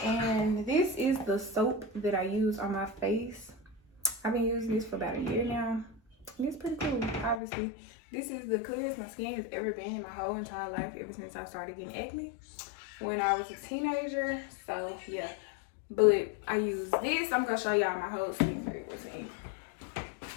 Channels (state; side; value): drops out; right; at 7.4 s